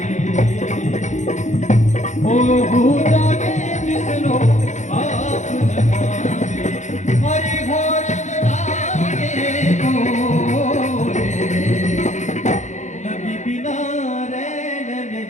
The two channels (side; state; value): right; late; 0.35 ms